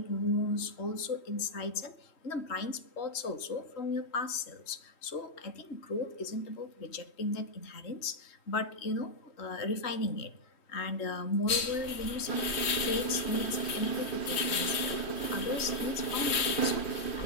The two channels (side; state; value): right; late; 3.1 ms